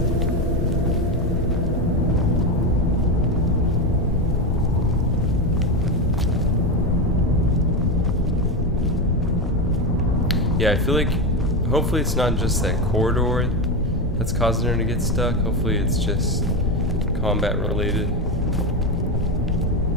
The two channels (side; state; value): both; normal; correlation 0.14